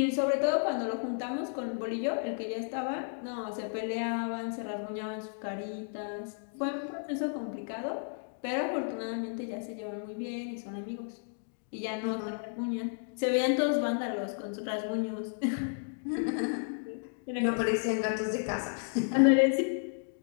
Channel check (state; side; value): silent; right; digital silence